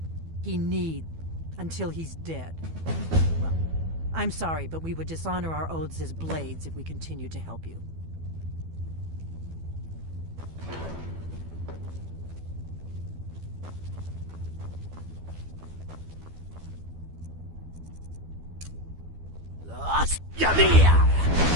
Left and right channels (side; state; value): left; late; 12 ms